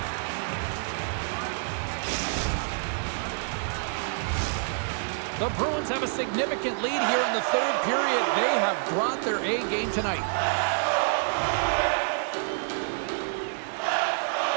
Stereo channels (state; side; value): silent; left; 60 dB below the other